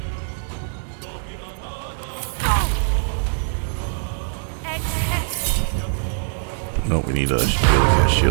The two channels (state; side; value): silent; left; 64 dB below the other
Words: No, we need a shield, cast